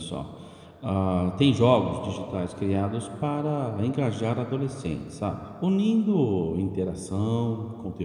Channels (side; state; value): both; identical; correlation 1.00